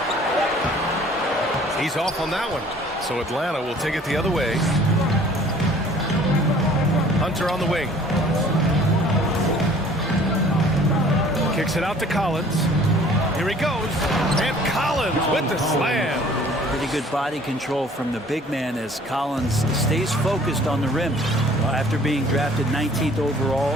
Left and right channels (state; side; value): normal; both; correlation 0.53